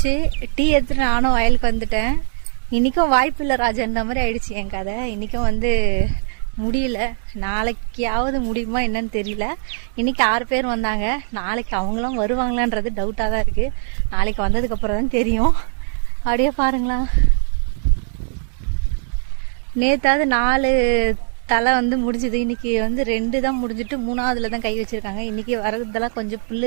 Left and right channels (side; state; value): left; silent; digital silence